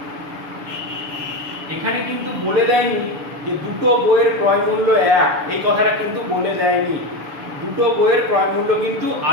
এখানে কিন্তু বলে দেয়নি যে দুটো বইয়ের ক্রয় মূল্য এক, এই কথাটা কিন্তু বলে দেয়নি। দুটো বইয়ের ক্রয় মূল্য কিন্তু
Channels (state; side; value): late; left; 6.8 ms